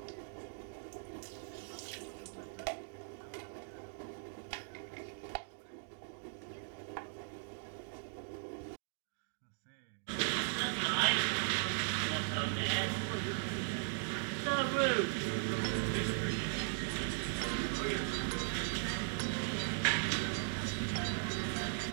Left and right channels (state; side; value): silent; left; digital silence